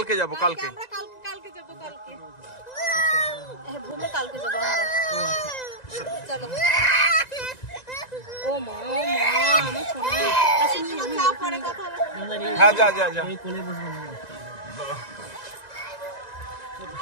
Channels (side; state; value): right; late; 1.9 ms